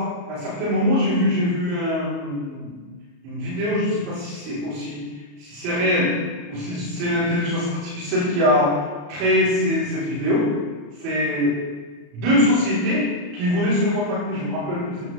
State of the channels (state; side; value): late; left; 34 ms